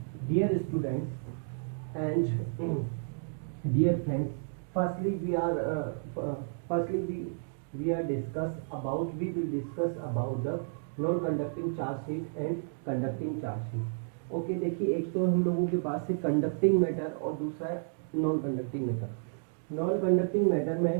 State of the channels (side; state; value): left; silent; digital silence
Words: Dear students and dear friends, firstly we will discuss about the non conducting charge sheet and conducting charge sheet. Okay, देखिए एक तो हम लोगों के पास है conducting matter और दूसरा है non conducting matter. Non conducting matter